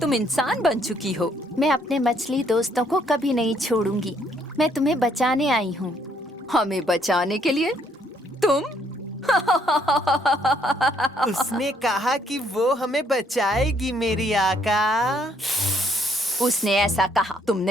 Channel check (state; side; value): normal; both; correlation 0.68